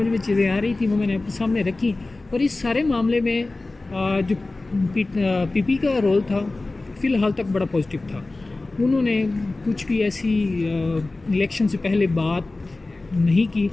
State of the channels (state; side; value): quieter; right; 3.1 dB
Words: میں چیزیں آ رہی تھیں وہ میں نے اپنے سامنے رکھی، اور اس سارے معاملے میں جو پی پی کا رول تھا فی الحال تک بڑا پازیٹیو تھا۔ انہوں نے کچھ بھی ایسی الیکشن سے پہلے بات نہیں کی